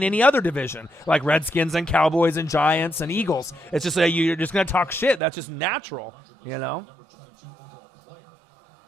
any other division, like Redskins and Cowboys and Giants and Eagles. It's just you're just going to talk shit. That's just natural,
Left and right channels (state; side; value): drops out; left; at 5.2 s